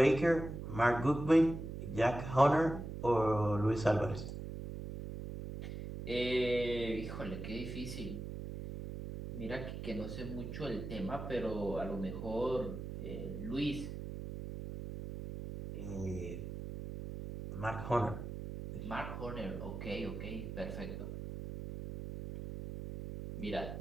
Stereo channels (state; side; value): noise; right; hum, 7 dB below the sound